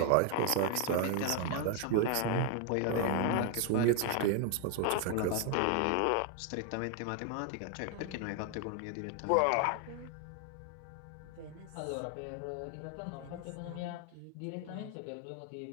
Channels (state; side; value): different; both; correlation 0.00